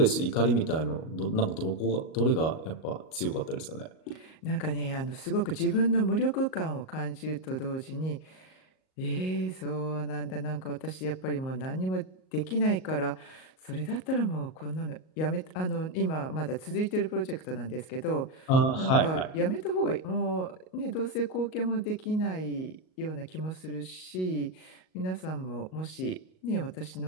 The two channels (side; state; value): right; late; 38 ms